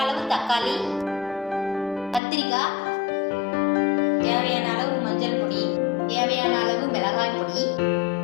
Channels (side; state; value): right; drops out; at 2.2 s